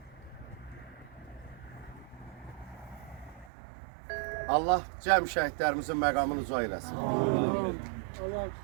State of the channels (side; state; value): left; drops out; at 3.5 s